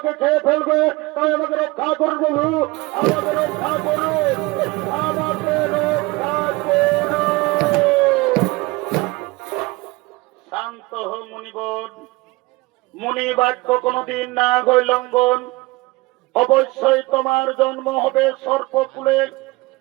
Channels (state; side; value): quieter; left; 22.6 dB